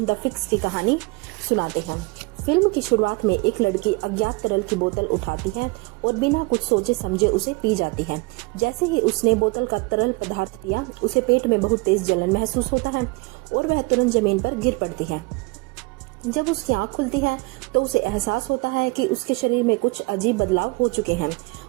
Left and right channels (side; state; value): left; quieter; 26.0 dB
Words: द फिक्स की कहानी सुनाते हैं। फिल्म की शुरुआत में एक लड़की अज्ञात तरल की बोतल उठाती है और बिना कुछ सोचे समझे उसे पी जाती है। जैसे ही उसने बोतल का तरल पदार्थ पिया, उसे पेट में बहुत तेज जलन महसूस होता है और वह तुरंत जमीन पर गिर पड़ती है। जब उसकी आंख खुलती है तो उसे एहसास होता है कि उसके शरीर में कुछ अजीब बदलाव हो चुके हैं।